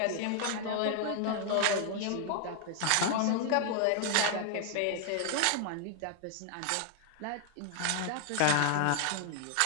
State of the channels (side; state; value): both; different; correlation 0.00